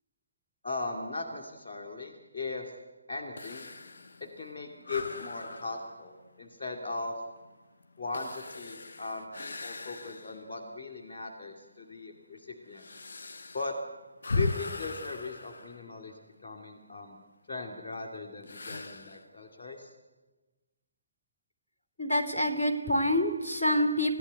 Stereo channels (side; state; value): both; inverted; correlation -0.72